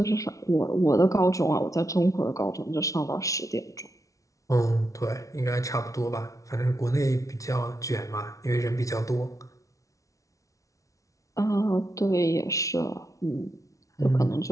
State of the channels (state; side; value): late; right; 0.16 ms